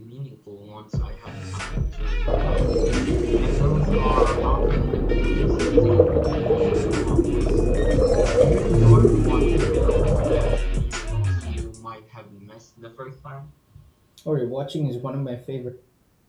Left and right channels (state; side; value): identical; both; correlation 1.00